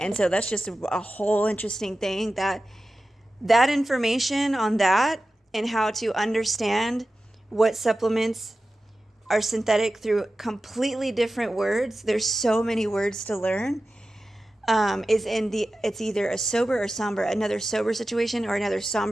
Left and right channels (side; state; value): both; normal; correlation 0.94